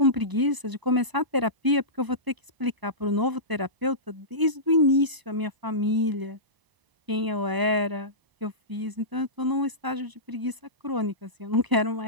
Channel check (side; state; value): left; late; 1.0 ms